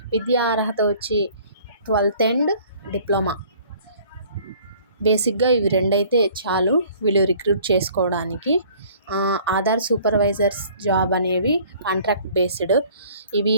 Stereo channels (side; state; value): both; inverted; correlation -0.53